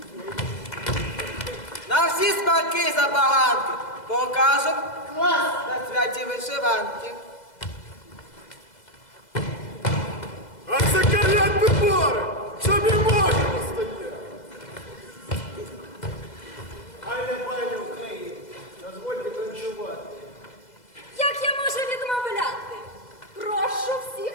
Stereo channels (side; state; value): right; late; 2.0 ms